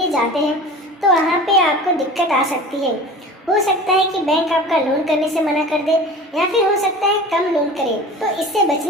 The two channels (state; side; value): normal; both; correlation 0.38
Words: जाते हैं तो वहाँ पे आपको दिक्कत आ सकती है। हो सकता है कि बैंक आपका लोन करने से मना कर दे या फिर हो सकता है कम लोन करे। तो इससे